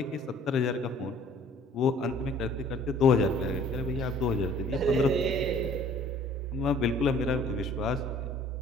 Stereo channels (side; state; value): both; normal; correlation 0.54